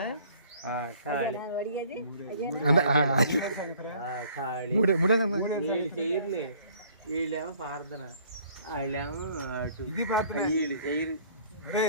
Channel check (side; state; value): both; inverted; correlation -0.56